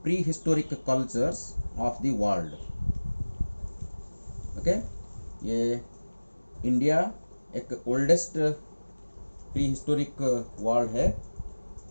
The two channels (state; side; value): inverted; both; correlation -1.00